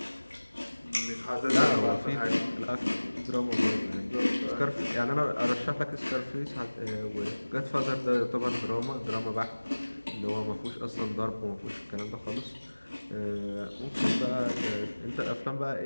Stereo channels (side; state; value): both; inverted; correlation -1.00